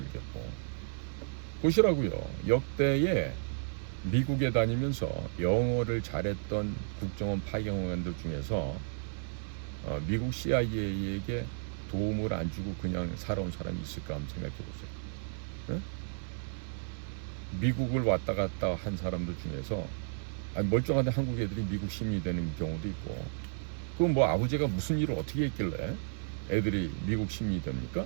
보시라고요. 역대에 미국에 다니면서 영어를 잘했던 국정원 파견원들 중에서 미국 CIA에게 도움을 안 주고 그냥 살아온 사람이 있을까 한번 생각해 보세요. 미국을 왔다 갔다 한 사람들 중에서 멀쩡한데 한국 애들이 미국 시민이 되는 경우도 있고, 그럼 뭐 아버지가 무슨 일을 어떻게 했길래 애들이 미국 시민이 됩니까?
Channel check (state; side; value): silent; left; digital silence